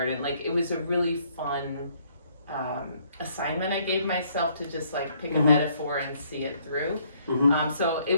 Like it was a really fun assignment I gave myself to just like pick a metaphor and see it through. So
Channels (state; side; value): inverted; both; correlation -0.67